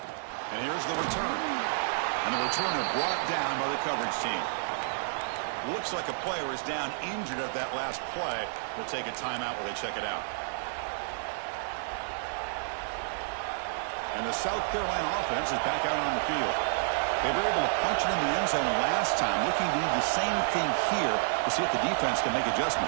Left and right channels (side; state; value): left; silent; 55 dB below the other